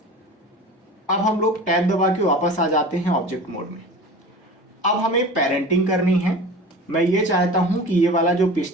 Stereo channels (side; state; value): both; normal; correlation 0.36